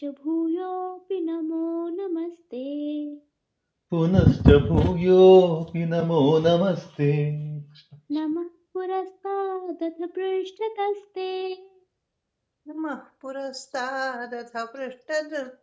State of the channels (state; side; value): identical; both; correlation 1.00